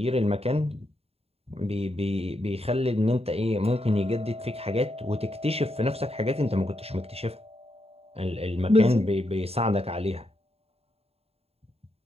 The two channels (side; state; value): left; late; 0.29 ms